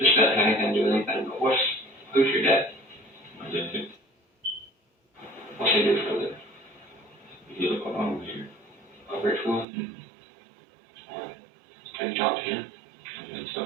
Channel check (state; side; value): drops out; left; at 9.7 s